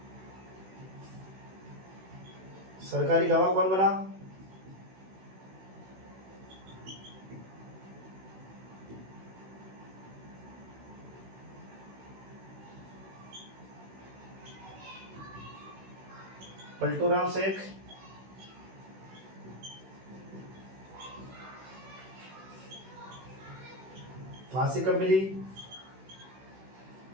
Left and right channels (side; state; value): left; late; 16 ms